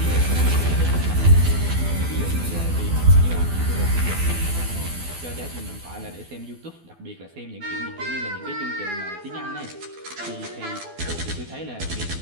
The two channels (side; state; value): left; late; 12 ms